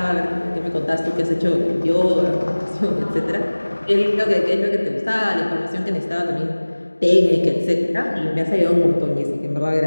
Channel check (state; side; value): inverted; both; correlation -1.00